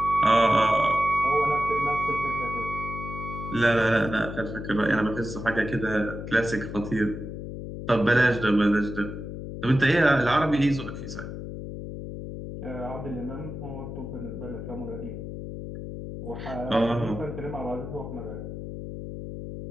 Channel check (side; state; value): left; noise; hum, 8 dB below the sound